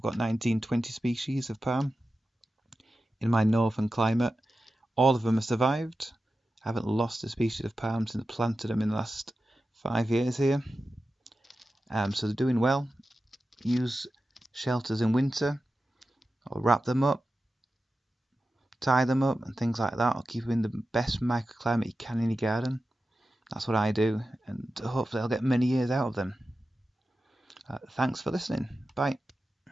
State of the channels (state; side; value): normal; both; correlation 0.93